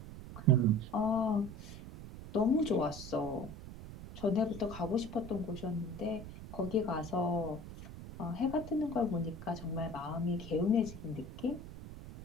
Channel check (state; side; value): noise; right; rumble, 12 dB below the sound